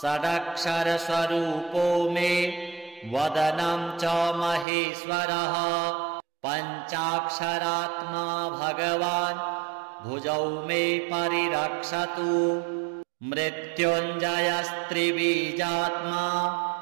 षडक्षरस्वरूपो मे वदनं च महेश्वरः पञ्चाक्षरात्मा भगवान् भुजौ मे परिरक्षतु मृत्युञ्जयस्त्रिबीजात्मा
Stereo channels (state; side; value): drops out; left; at 4.7 s